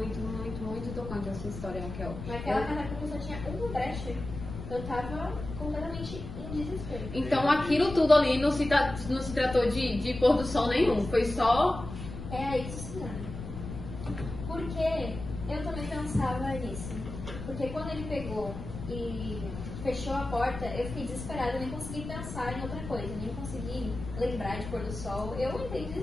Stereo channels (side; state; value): left; noise; rumble, 9 dB below the sound